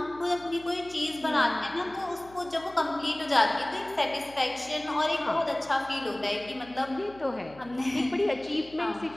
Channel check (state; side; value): noise; left; hum, 22 dB below the sound